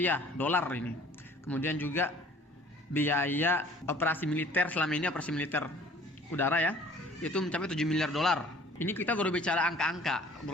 dolar ini. Kemudian juga biaya operasi militer selama ini, operasi militer udara ya, itu mencapai 7 miliar dolar. Ini kita baru bicara angka-angka,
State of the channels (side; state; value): both; normal; correlation 0.51